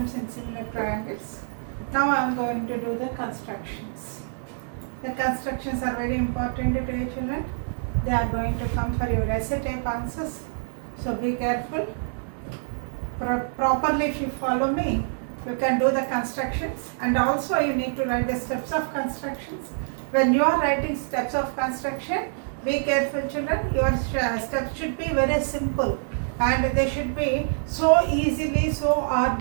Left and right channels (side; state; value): left; silent; digital silence